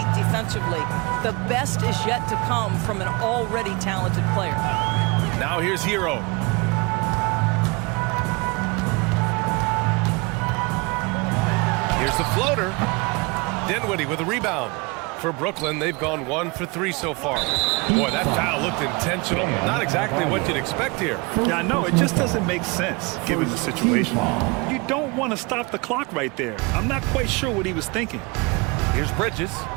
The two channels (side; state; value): left; quieter; 27.5 dB